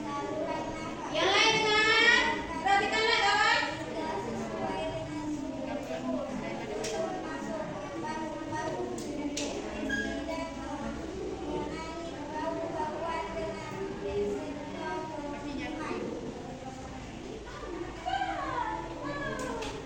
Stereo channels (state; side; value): identical; both; correlation 1.00